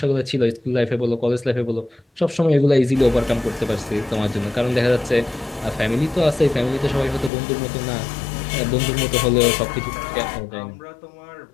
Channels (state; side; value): drops out; right; at 7.3 s